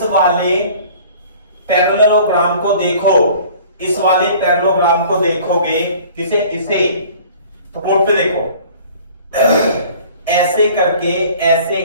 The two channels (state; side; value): inverted; both; correlation -0.49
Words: वाले पैरेललोग्राम को देखो, इस वाले पैरेललोग्राम को देखोगे, इसे तो बोर्ड पे देखो, ऐसे करके ऐसे